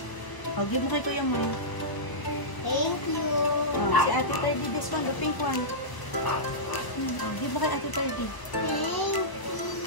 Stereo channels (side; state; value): right; late; 1.0 ms